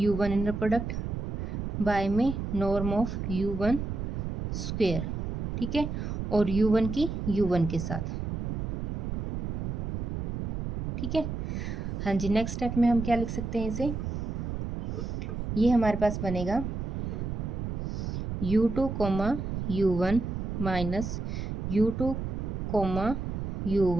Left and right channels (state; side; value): noise; right; rumble, 3 dB below the sound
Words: inner product by में नॉर्म ऑफ u1 स्क्वेयर, ठीक है, और u1 की u1 के साथ, ठीक है। हाँ जी, नेक्स्ट स्टेप में हम क्या लिख सकते हैं इसे, ये हमारे पास बनेगा u2 comma u1 minus u2 comma